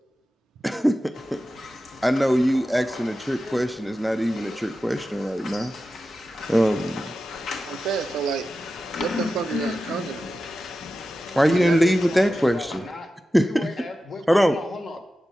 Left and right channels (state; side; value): normal; both; correlation 0.93